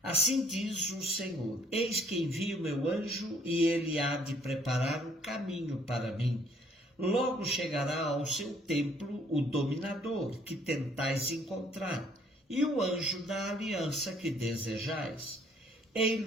Assim diz o Senhor: eis que envio meu anjo e ele há de preparar o caminho para mim. Logo chegará ao seu templo o dominador que tentais encontrar, e o anjo da aliança que desejais.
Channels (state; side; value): normal; both; correlation 0.62